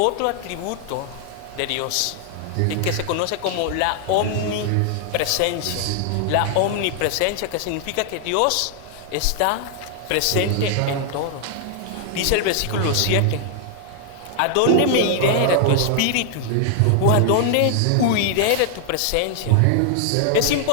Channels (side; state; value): both; different; correlation 0.00